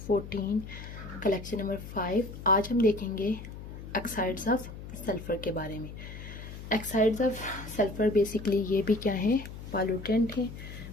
collection number 5। आज हम देखेंगे ऑक्साइड्स ऑफ सल्फ़र के बारे में। ऑक्साइड्स ऑफ सल्फ़र बेसिकली ये भी क्या है, पॉल्यूटेंट हैं।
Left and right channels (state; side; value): noise; left; hum, 12 dB below the sound